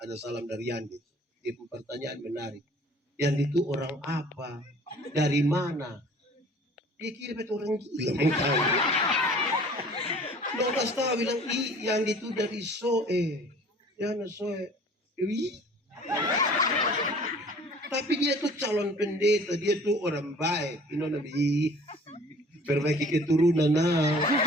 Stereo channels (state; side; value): normal; both; correlation 0.50